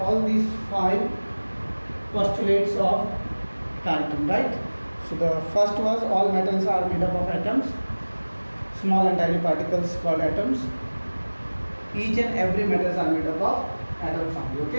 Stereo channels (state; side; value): inverted; both; correlation -1.00